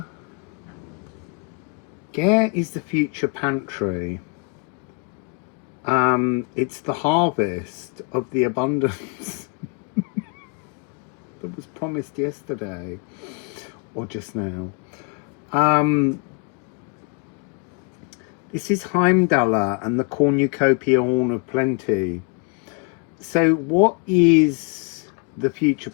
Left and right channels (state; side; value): quieter; right; 35.5 dB